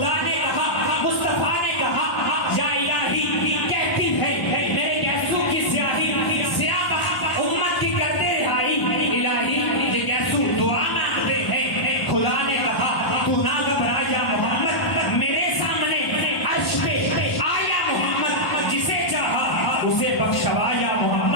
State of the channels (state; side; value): late; right; 1.1 ms